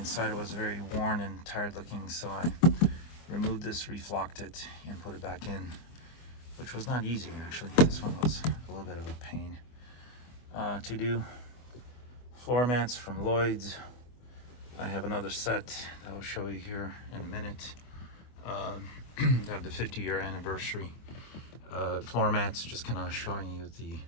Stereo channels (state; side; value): late; right; 24 ms